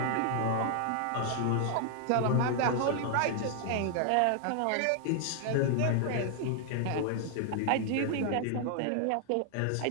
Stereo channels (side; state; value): both; different; correlation 0.00